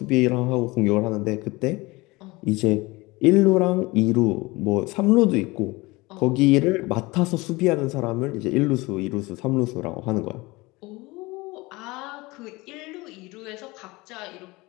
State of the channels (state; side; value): quieter; right; 22.6 dB